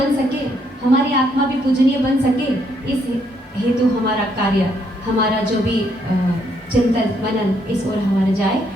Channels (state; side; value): normal; both; correlation 0.72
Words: सके, हमारी आत्मा भी पूजनीय बन सके। इस हेतु हमारा कार्य, हमारा जो भी चिंतन मनन इस ओर हमारा जाए,